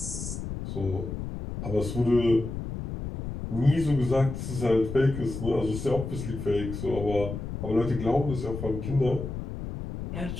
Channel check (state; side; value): noise; left; rumble, 7 dB below the sound